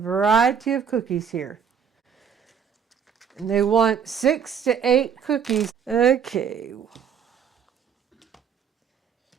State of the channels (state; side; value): quieter; left; 7.3 dB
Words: of cookies here. And they want 6 to 8 cookies. Okay.